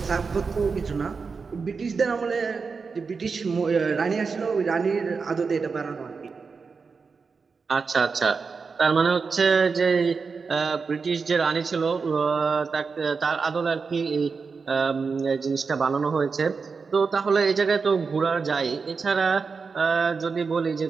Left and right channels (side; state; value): left; quieter; 5.0 dB